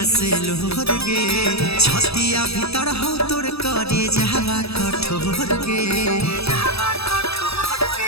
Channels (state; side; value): late; right; 0.78 ms